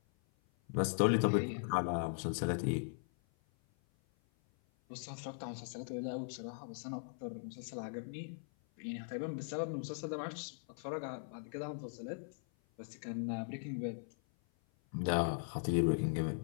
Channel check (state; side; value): silent; right; 52 dB below the other